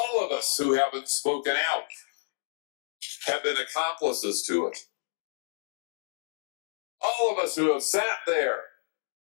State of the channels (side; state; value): right; silent; digital silence